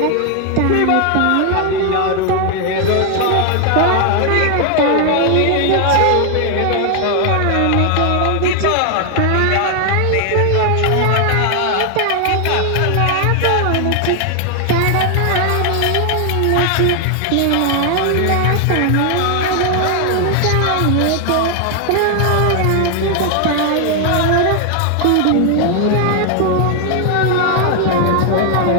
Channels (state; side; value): different; both; correlation 0.00